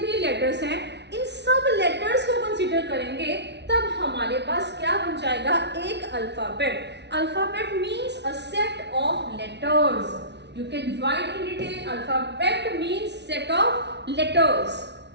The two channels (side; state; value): left; late; 0.50 ms